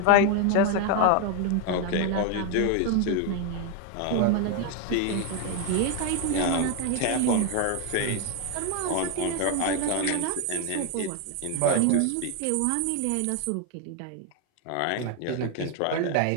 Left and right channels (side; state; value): both; different; correlation 0.01